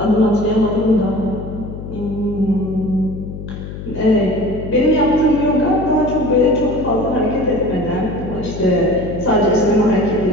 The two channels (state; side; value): noise; left; hum, 10 dB below the sound